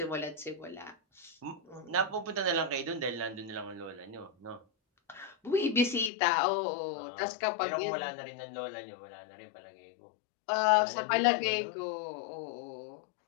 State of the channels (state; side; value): drops out; right; at 6.1 s